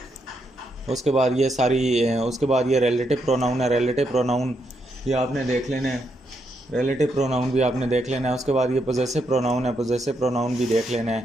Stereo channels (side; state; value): both; normal; correlation 0.79